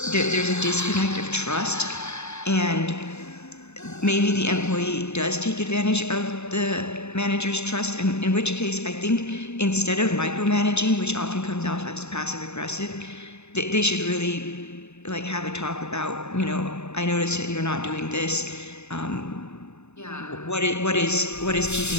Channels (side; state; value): right; late; 0.81 ms